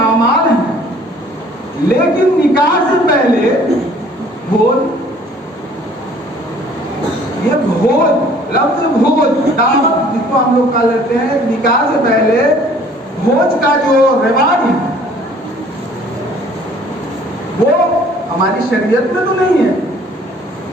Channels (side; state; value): both; normal; correlation 0.55